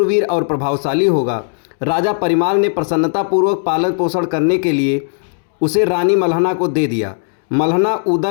और प्रभावशाली होगा। राजा परिमाल ने प्रसन्नतापूर्वक पालन पोषण करने के लिए उसे रानी मल्हना को दे दिया। मल्हना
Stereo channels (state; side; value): silent; right; digital silence